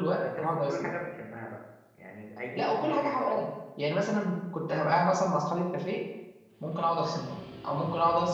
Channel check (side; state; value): both; identical; correlation 1.00